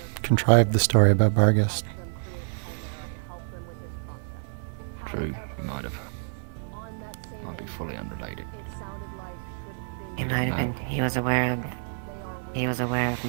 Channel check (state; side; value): silent; left; 58 dB below the other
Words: contrived the story about Barghest. True, he might have. Might be fully unrelated. He was aware of